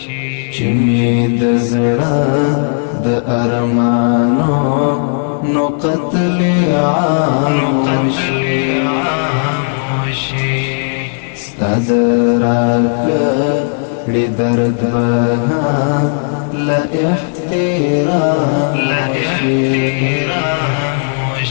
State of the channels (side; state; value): right; silent; digital silence